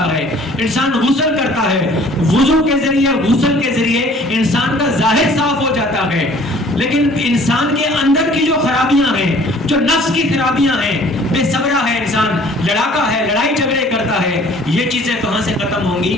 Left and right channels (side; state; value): both; normal; correlation 0.53